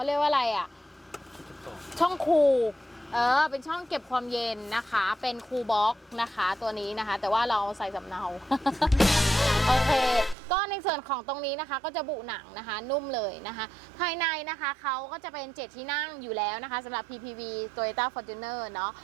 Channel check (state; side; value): drops out; left; at 10.4 s